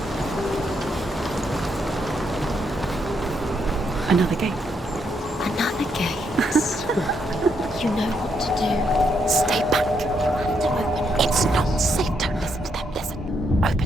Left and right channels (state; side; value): normal; both; correlation 0.77